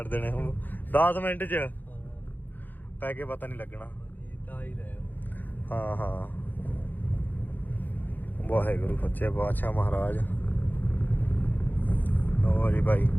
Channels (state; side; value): late; right; 0.087 ms